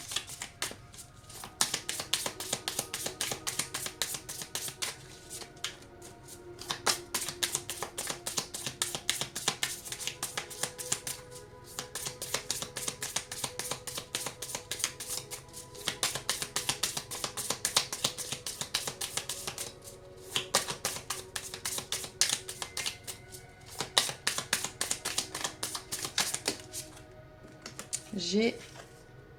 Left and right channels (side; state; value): both; identical; correlation 1.00